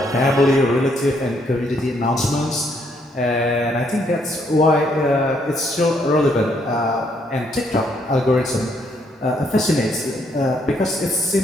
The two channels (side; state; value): both; normal; correlation 0.71